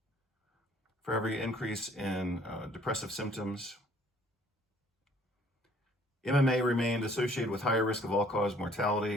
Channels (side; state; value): both; normal; correlation 0.59